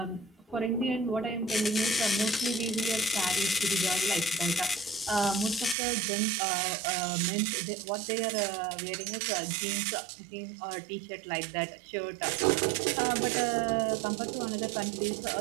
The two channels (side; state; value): left; drops out; at 5.8 s